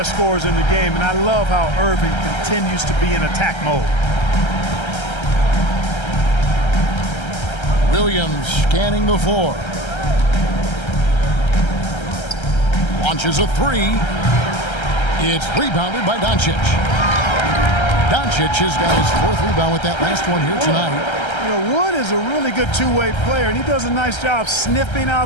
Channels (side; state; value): right; late; 1.3 ms